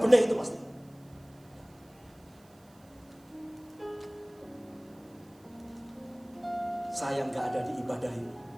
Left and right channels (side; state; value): right; noise; hiss, 29 dB below the sound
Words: itu pasti. Saya gak ada di ibadah ini.